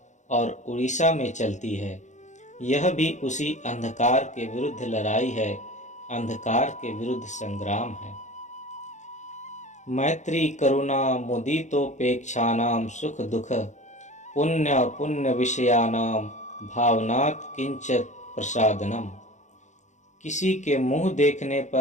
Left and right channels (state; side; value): late; right; 0.35 ms